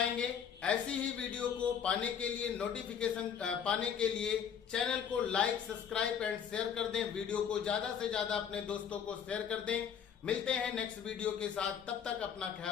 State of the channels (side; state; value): right; quieter; 7.9 dB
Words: ऐसी ही वीडियो को पाने के लिए, नोटिफिकेशन पाने के लिए चैनल को लाइक, सब्सक्राइब एंड शेयर कर दें। वीडियो को ज्यादा से ज्यादा अपने दोस्तों को शेयर कर दें। मिलते हैं नेक्स्ट वीडियो के साथ, तब तक अपना